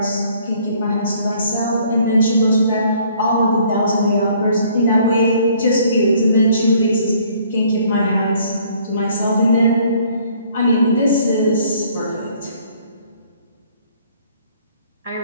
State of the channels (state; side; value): inverted; both; correlation -0.60